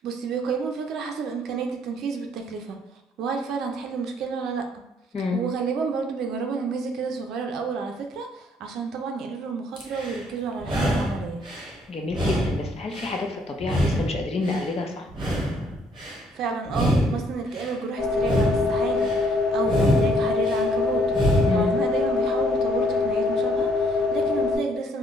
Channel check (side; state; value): both; normal; correlation 0.66